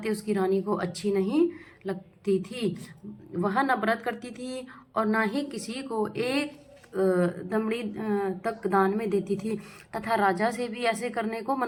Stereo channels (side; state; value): both; identical; correlation 1.00